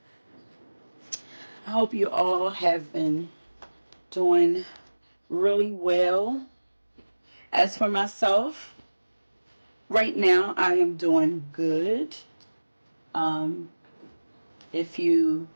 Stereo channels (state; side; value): inverted; both; correlation -1.00